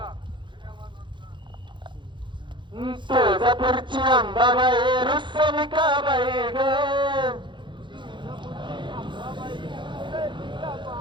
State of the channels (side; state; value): left; late; 0.23 ms